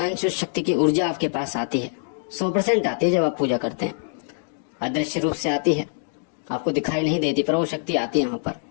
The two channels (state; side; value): silent; right; digital silence